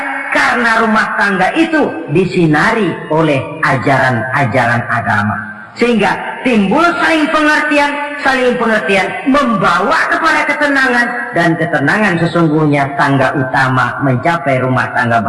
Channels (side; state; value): both; identical; correlation 1.00